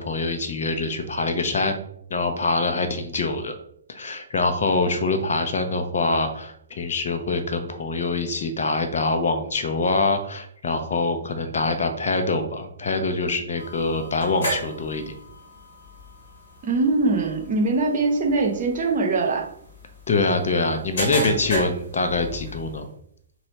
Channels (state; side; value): inverted; both; correlation -0.41